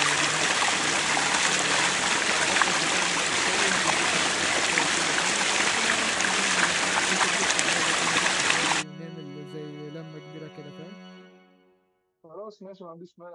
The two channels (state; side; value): identical; both; correlation 1.00